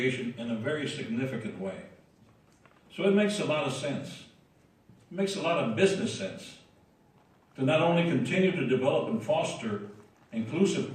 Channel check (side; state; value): both; identical; correlation 1.00